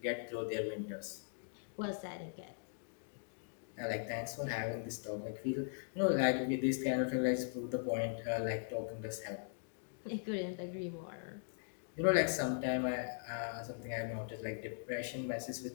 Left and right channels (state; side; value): silent; right; digital silence